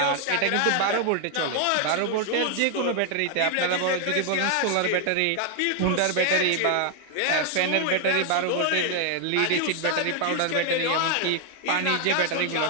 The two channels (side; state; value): both; different; correlation 0.00